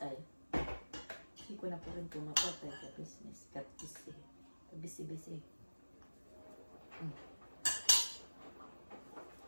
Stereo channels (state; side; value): inverted; both; correlation -1.00